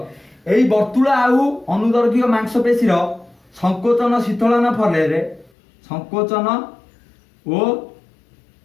एई वर्तुल आउ अनुदर्घिक मांसपेशी रो संकोचन शीतलन फले रे संकोचन ओ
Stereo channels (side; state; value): right; drops out; at 5.5 s